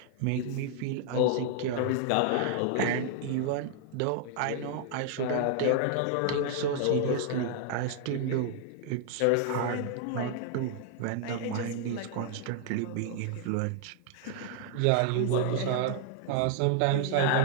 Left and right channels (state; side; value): different; both; correlation -0.01